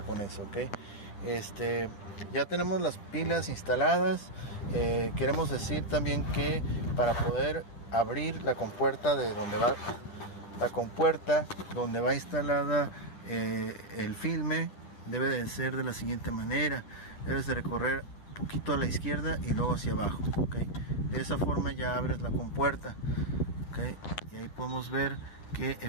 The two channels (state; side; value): late; right; 10 ms